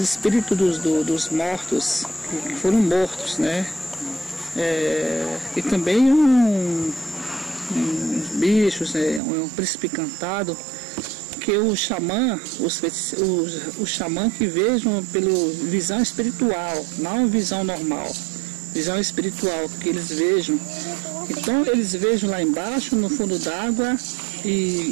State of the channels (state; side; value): drops out; left; at 9.2 s